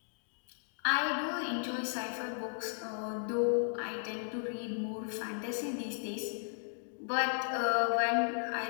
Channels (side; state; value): right; silent; digital silence